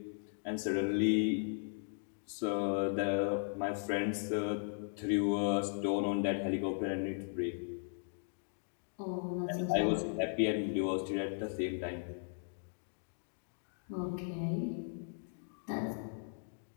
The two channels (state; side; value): silent; right; digital silence